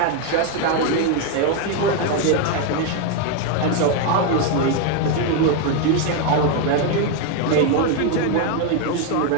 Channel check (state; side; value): different; both; correlation 0.01